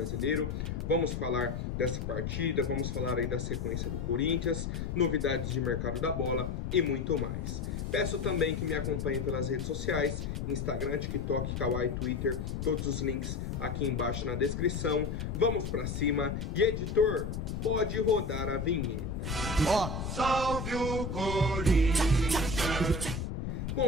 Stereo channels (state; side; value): noise; left; rumble, 3 dB below the sound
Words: Vamos falar dessa partida, vamos falar aí da sequência do Corinthians, novidades de mercado da bola e muito mais. Peço também que me acompanhem pelas redes sociais, Instagram, TikTok, Kawaii, Twitter, todos os links aqui embaixo na descrição. Vamos pra cima e editor, pode rodar a vinheta. Ó, salve o Corinthians!